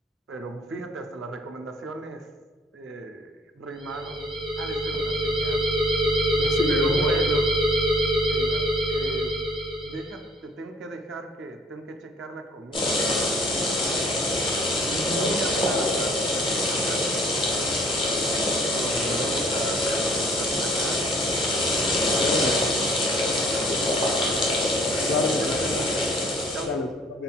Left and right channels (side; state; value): both; normal; correlation 0.57